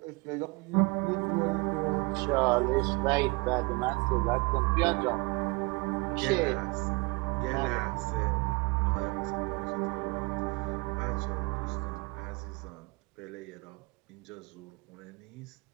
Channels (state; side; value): quieter; left; 27.3 dB